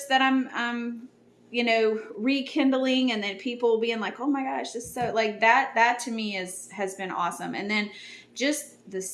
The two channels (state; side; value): identical; both; correlation 1.00